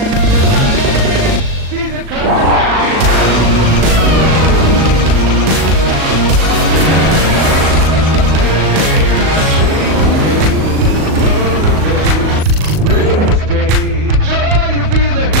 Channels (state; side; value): late; left; 38 ms